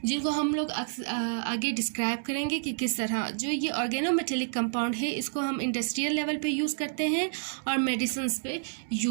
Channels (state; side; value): silent; left; digital silence